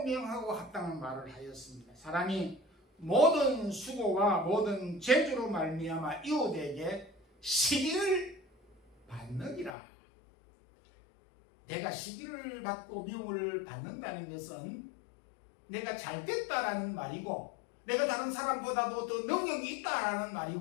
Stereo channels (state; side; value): drops out; right; at 9.8 s